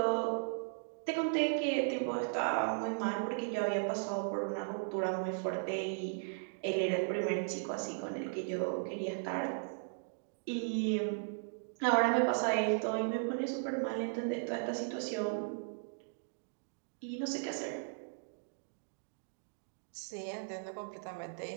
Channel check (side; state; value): left; silent; digital silence